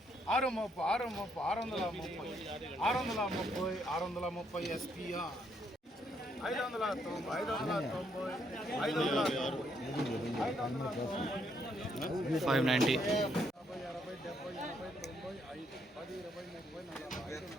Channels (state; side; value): normal; both; correlation 0.73